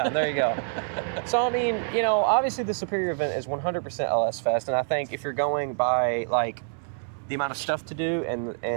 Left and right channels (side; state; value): left; silent; 61 dB below the other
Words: there you go. So, I mean, obviously the superior event is 100% LS Fest. And I think if you're going by, the amount of stuff to do